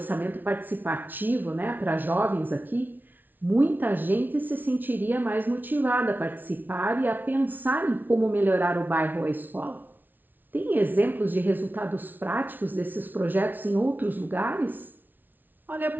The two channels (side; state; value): left; late; 0.087 ms